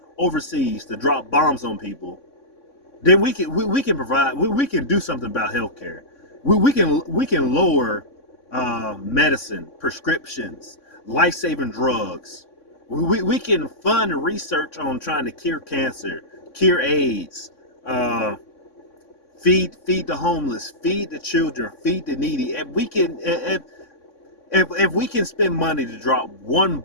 overseas to drop bombs on people, then we can provide, we can do something about healthcare. We can lower medicine, prescriptions, life-saving drugs. We can fund research on trying to cure cancer, cure AIDS, feed the homeless, feed the children, feed the needy. If we can spend money to drop one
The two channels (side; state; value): right; late; 3.6 ms